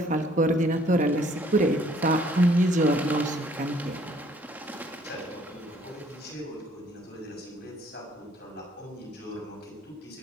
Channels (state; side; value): normal; both; correlation 0.61